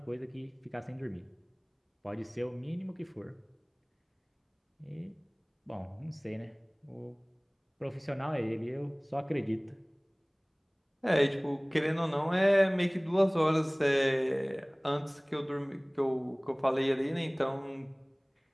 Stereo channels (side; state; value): both; identical; correlation 1.00